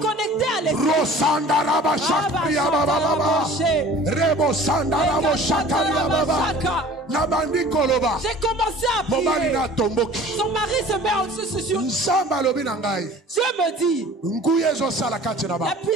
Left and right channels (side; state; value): both; normal; correlation 0.45